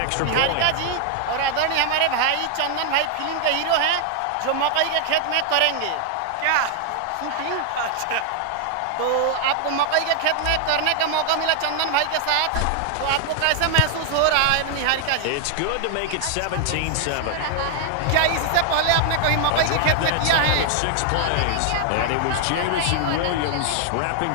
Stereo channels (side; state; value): both; different; correlation 0.00